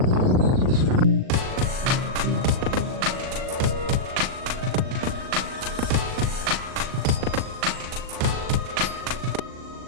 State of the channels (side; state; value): left; late; 39 ms